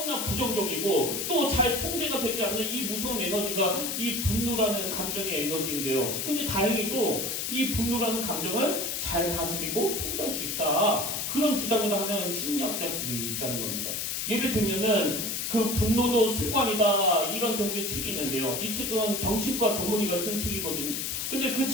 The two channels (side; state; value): left; noise; hiss, 2 dB below the sound